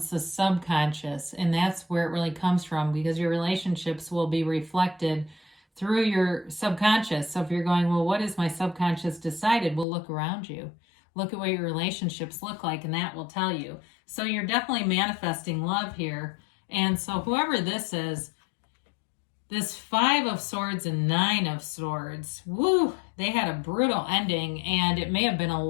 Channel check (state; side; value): drops out; right; at 9.9 s